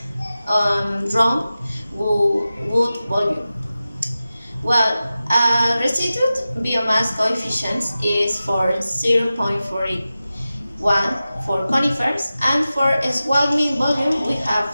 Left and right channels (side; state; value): both; inverted; correlation -0.94